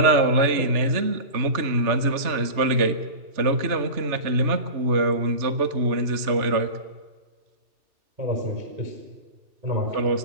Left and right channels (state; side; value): late; left; 3.3 ms